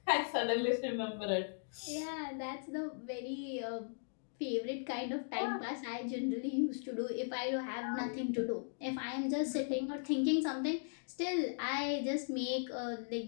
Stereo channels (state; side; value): silent; right; digital silence